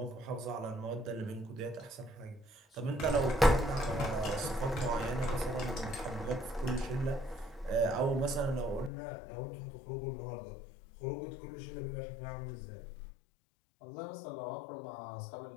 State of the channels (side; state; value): right; drops out; at 8.9 s